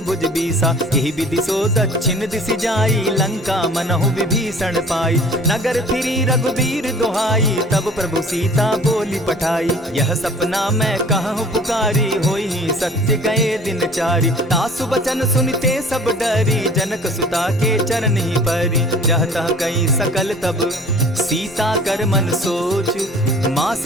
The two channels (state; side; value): normal; both; correlation 0.48